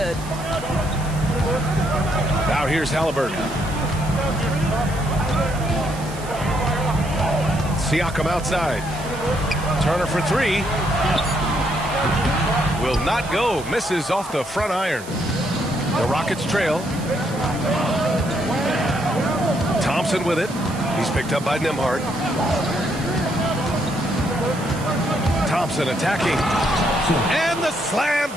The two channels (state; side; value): noise; right; hiss, 16 dB below the sound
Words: Now here's Halliburton. Siakam outside. Turner for 3. Will not go. Misses off the front iron. The Rockets trail. Thompson with it. He's picked up by Nembhard. Thompson attacking. And the slam